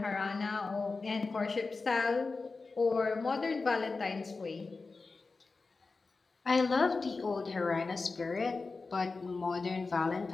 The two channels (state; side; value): quieter; right; 4.0 dB